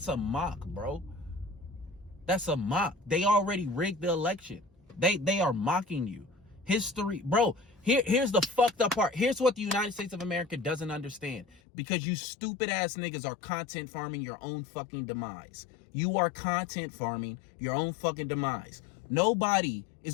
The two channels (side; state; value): right; drops out; at 11.6 s